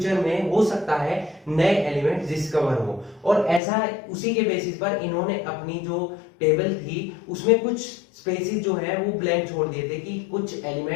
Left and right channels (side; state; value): right; drops out; at 3.6 s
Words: में हो सकता है नए एलिमेंट्स डिस्कवर हो, और ऐसा उसी के बेसिस पर इन्होंने अपनी जो टेबल थी उसमें कुछ स्पेसिस जो है वो ब्लैंक छोड़ दिए थे कि कुछ